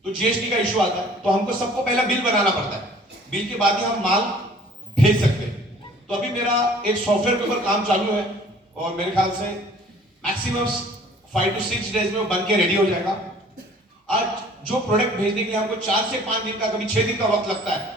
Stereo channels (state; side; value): normal; both; correlation 0.52